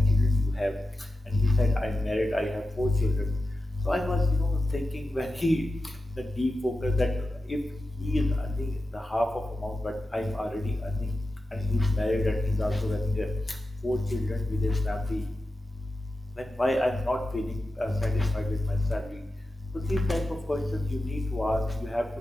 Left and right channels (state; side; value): normal; both; correlation 0.93